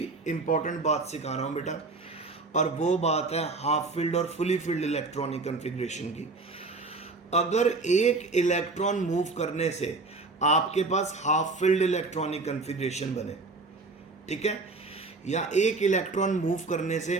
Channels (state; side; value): quieter; left; 3.6 dB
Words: इंपॉर्टेंट बात सिखा रहा हूँ बेटा, और वो बात है हाफ फील्ड और फुली फील्ड इलेक्ट्रॉनिक कन्फिग्रेशन की। अगर एक इलेक्ट्रॉन मूव करने से आपके पास हाफ फील्ड इलेक्ट्रॉनिक कन्फिग्रेशन बने, ठीक है, या एक इलेक्ट्रॉन मूव करने से